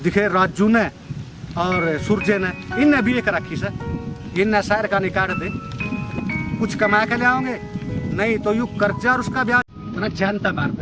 दिखे राजू ने और सूरजे ने इनने भी एक रखी से, इनने शहर का निकाल दे, कुछ कमा के ले आओगे, नहीं तो यू कर्जा और उसका ब्याज ना जानता मार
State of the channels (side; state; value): both; identical; correlation 1.00